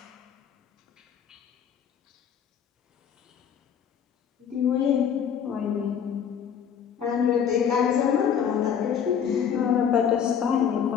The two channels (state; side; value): quieter; right; 8.0 dB